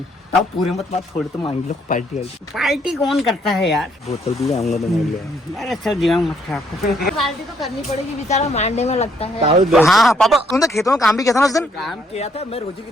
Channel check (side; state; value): both; normal; correlation 0.69